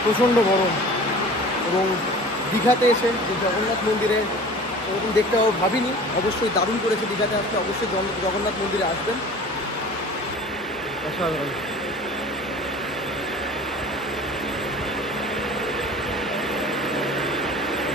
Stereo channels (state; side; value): normal; both; correlation 0.42